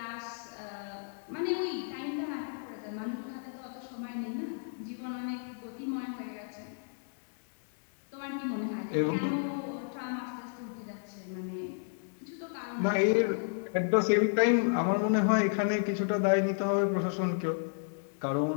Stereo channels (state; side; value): silent; right; digital silence